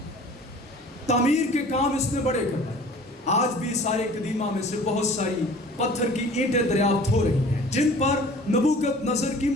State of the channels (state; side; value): normal; both; correlation 0.47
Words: تعمیر کے کام اس نے بڑے کرائے. آج بھی سارے قدیمہ میں سے بہت ساری پتھر کی اینٹیں دریافت ہو رہی ہیں جن پر نبوکدنضر کی